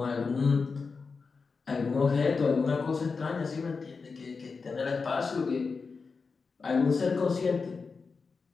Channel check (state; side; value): quieter; right; 4.7 dB